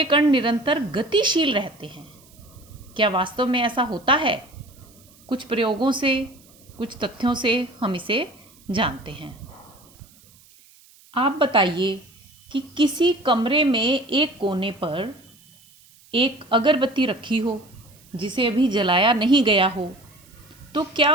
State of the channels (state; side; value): noise; right; hiss, 27 dB below the sound